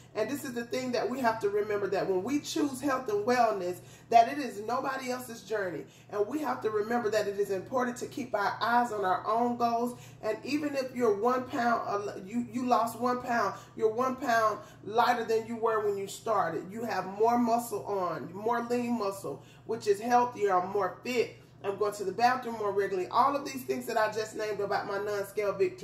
And this is the thing that we have to remember, that when we choose health and wellness, that it is nobody else's journey. And we have to remember that it is important to keep our eyes on our own goals. And even if you're 1 pound, you lost 1 pound, you're 1 pound lighter than you were when you started. You have more muscle on, more lean muscle, which is healthier, or more fit. I'm going to the bathroom more regularly. All of these things that I just named about my non-scale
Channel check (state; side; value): identical; both; correlation 1.00